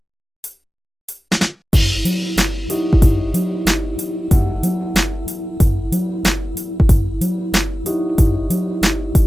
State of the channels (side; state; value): both; normal; correlation 0.95